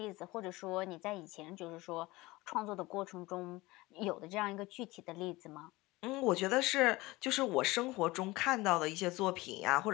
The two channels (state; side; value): quieter; right; 20.8 dB